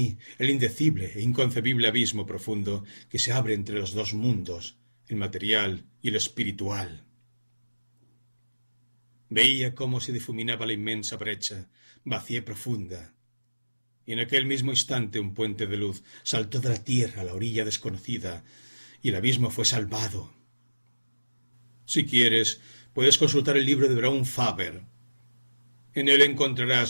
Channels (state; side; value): inverted; both; correlation -1.00